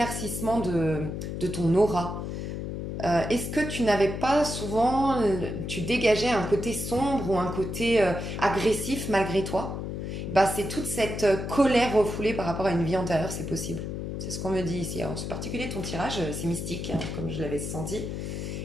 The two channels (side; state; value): left; noise; hum, 5 dB below the sound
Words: de ton aura. Est-ce que tu n'avais pas souvent, tu dégageais un côté sombre ou un côté agressif malgré toi? Bah, c'est toute cette colère refoulée par rapport à une vie antérieure, c'est possible. C'est ce qu'on me dit ici. Alors, c'est particulier ton tirage, c'est mystique, hein, comme je l'avais senti.